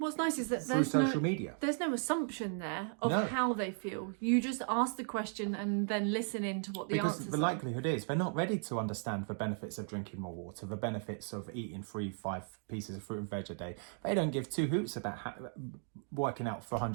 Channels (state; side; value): silent; left; 54 dB below the other